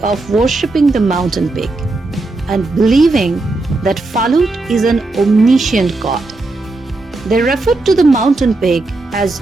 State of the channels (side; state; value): left; quieter; 3.1 dB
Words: of worshipping the mountain peak and believing that Phalut is an omniscient god. They refer to the mountain peak as